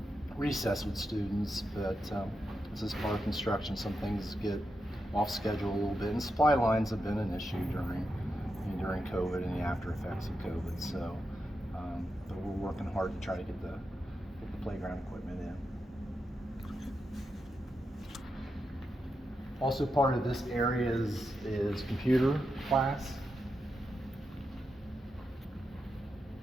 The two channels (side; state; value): both; normal; correlation 0.87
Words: recess with students, but this is part of construction. Some things get off schedule a little bit, and supply lines have been an issue during COVID and the after effects of COVID. So, but we're working hard to try to get the playground equipment in. Also, part of this area is computer class.